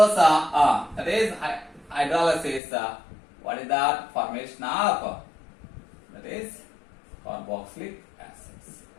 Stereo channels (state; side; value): drops out; right; at 2.6 s